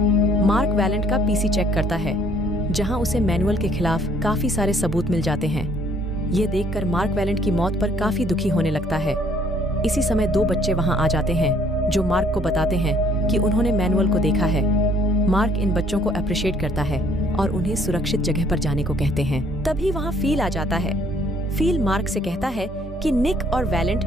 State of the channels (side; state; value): both; normal; correlation 0.62